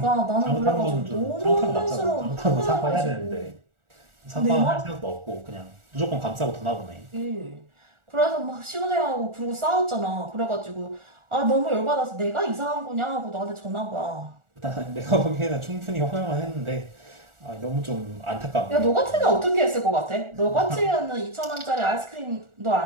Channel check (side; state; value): left; late; 1.4 ms